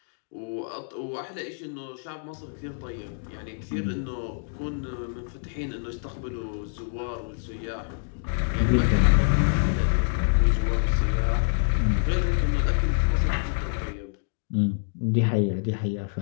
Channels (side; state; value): right; silent; digital silence